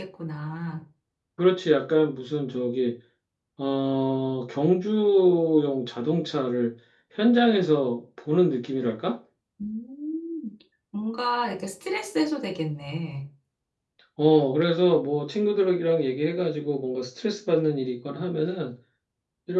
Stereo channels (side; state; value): both; identical; correlation 1.00